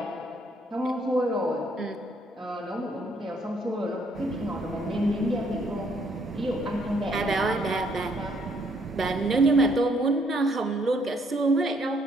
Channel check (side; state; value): both; normal; correlation 0.68